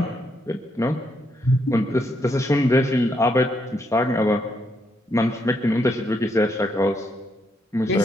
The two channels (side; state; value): both; normal; correlation 0.77